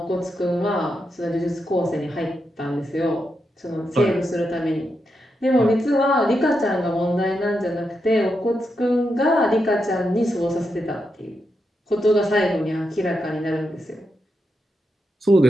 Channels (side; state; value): both; normal; correlation 0.85